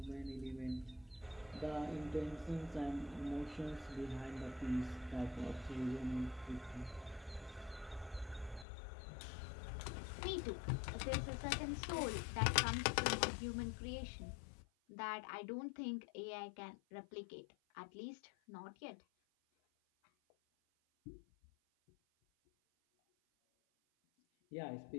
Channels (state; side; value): drops out; right; at 8.7 s